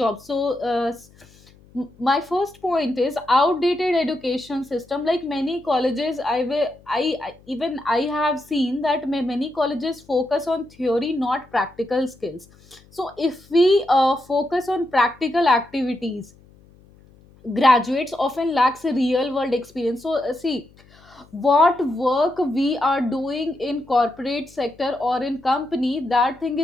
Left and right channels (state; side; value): noise; left; hum, 27 dB below the sound